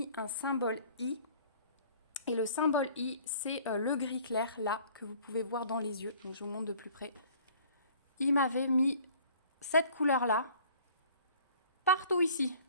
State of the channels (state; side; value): inverted; both; correlation -0.52